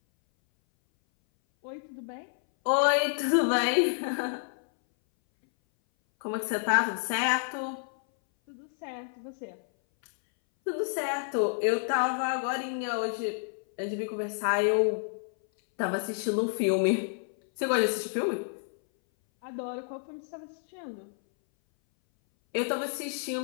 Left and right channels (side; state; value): right; silent; 58 dB below the other